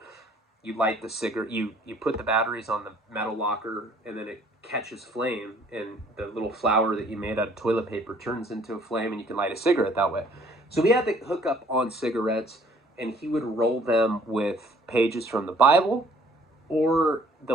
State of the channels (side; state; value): both; normal; correlation 0.58